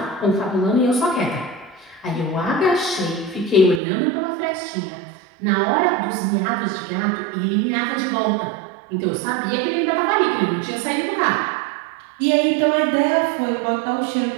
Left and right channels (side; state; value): left; drops out; at 3.8 s